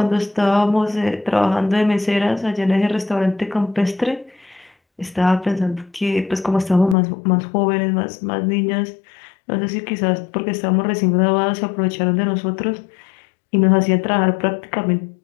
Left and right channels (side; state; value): right; drops out; at 7.0 s